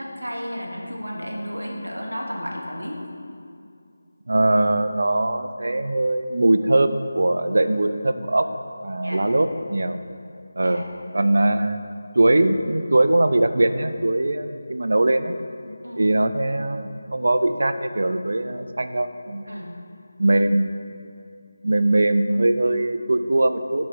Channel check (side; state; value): both; inverted; correlation -0.98